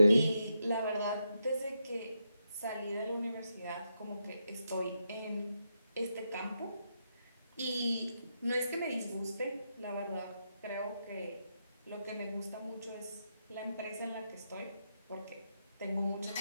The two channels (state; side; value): inverted; both; correlation -0.83